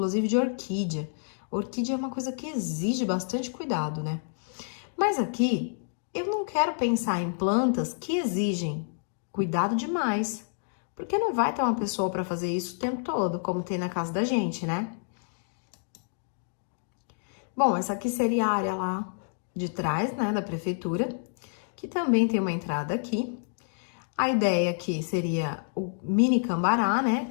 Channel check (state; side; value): silent; right; digital silence